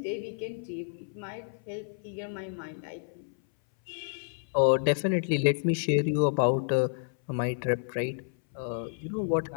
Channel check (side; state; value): right; silent; 58 dB below the other